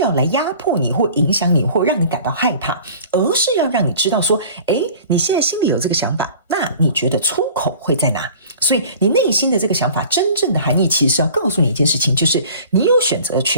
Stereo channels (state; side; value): inverted; both; correlation -0.45